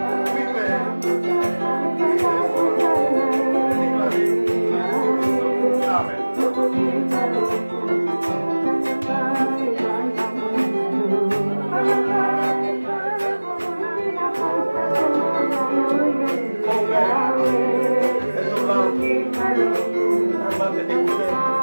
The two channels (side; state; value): both; inverted; correlation -1.00